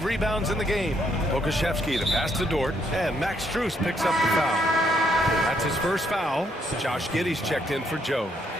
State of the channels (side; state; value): both; normal; correlation 0.72